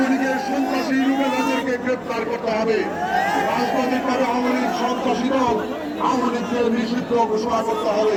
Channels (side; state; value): both; identical; correlation 1.00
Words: লীগের সন্ত্রাসী রুবেলাদেরকে গ্রেপ্তার করতে হবে। রাজনৈতিকভাবে আওয়ামী লীগ সন্ত্রাসী দল, আওয়ামী লীগকে নিষিদ্ধ ঘোষণা করতে